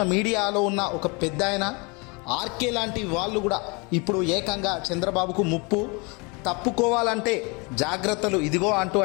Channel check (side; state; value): right; quieter; 29.7 dB